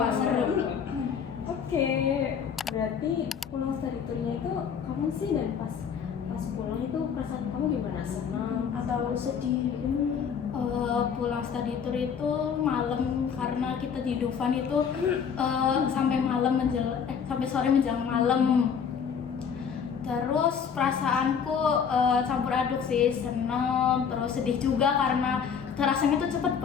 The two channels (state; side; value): quieter; right; 7.0 dB